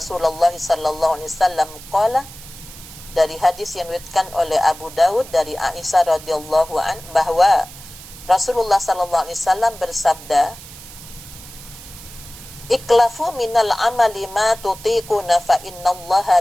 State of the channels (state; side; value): noise; right; hiss, 17 dB below the sound